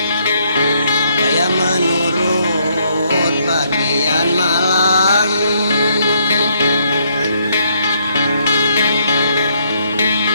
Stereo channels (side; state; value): both; inverted; correlation -0.71